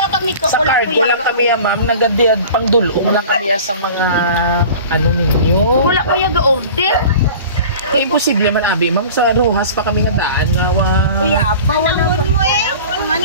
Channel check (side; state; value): both; inverted; correlation -0.40